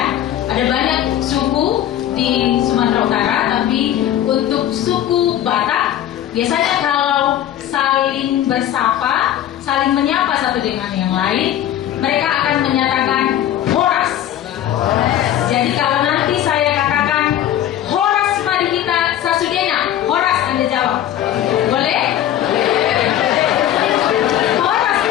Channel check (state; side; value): quieter; right; 11.6 dB